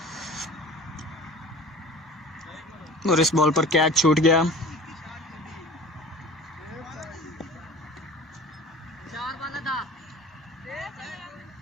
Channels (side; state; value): both; normal; correlation 0.41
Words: और इस बॉल पर कैच छूट गया। 4 वाला था